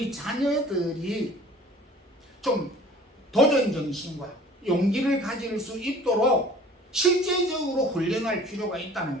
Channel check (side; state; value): both; normal; correlation 0.48